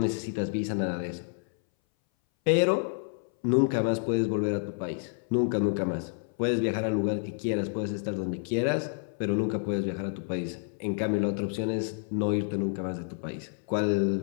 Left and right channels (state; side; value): silent; right; 58 dB below the other